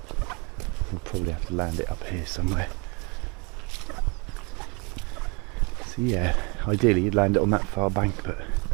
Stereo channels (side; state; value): left; quieter; 31.1 dB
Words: We'll probably have to land it up here somewhere. So yeah, ideally you'd land it on that far bank, but